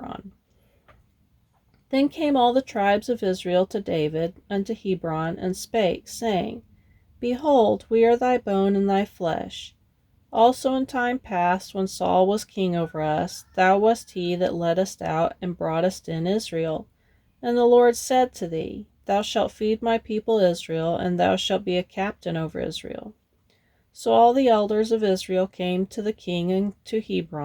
Then came all the tribes of Israel to David unto Hebron, and spake, saying, Behold, we are thy bone and thy flesh. Also in time past, when Saul was king over us, thou wast he that led us out and broughtest in Israel. And the Lord said to thee, Thou shalt feed my people Israel, and thou shalt be a captain over Israel. So all the elders of Israel came to the king and to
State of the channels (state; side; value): identical; both; correlation 1.00